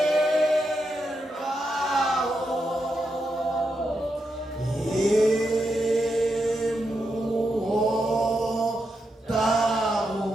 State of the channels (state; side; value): normal; both; correlation 0.84